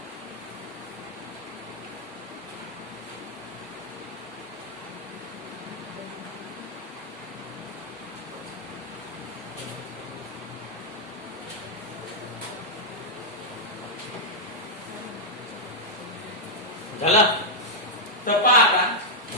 झाला. तर पहा आता,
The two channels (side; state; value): both; normal; correlation -0.05